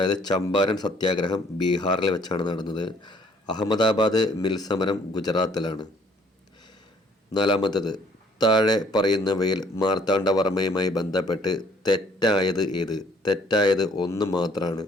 ചമ്പാരൻ സത്യാഗ്രഹം ബീഹാറിൽ വെച്ചാണ് നടന്നത്. അഹമ്മദാബാദ് മിൽ സമരം ഗുജറാത്തിലാണ്. നാലാമത്തേത്: താഴെ പറയുന്നവയിൽ മാർത്താണ്ഡവർമ്മയുമായി ബന്ധപ്പെട്ട് തെറ്റായത് ഏത്? തെറ്റായത് 1 മാത്രമാണ്.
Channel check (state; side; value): normal; both; correlation 0.61